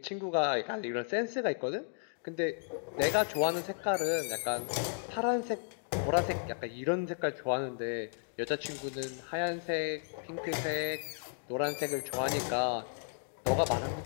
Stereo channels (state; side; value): silent; right; digital silence